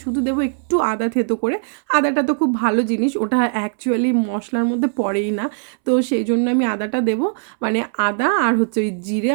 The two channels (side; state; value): left; silent; 66 dB below the other